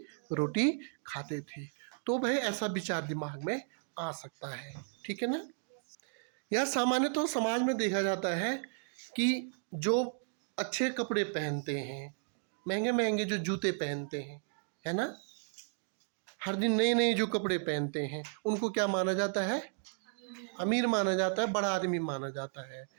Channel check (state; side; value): silent; left; digital silence